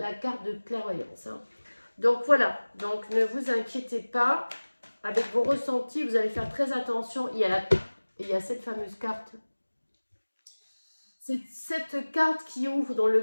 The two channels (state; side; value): inverted; both; correlation -1.00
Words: carte de clairvoyance. Hein. Donc voilà, donc ne vous inquiétez pas. Avec vos ressentis, vous allez faire très attention. Il y a cette fameuse carte. C'est cette carte qui ouvre dans